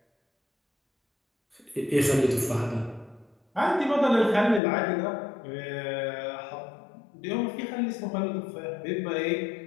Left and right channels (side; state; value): right; drops out; at 4.6 s